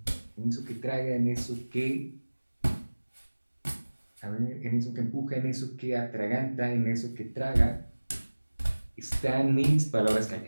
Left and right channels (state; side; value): inverted; both; correlation -1.00